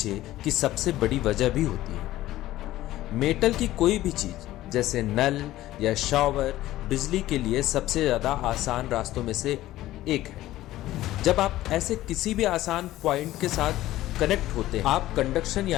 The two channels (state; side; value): quieter; right; 15.3 dB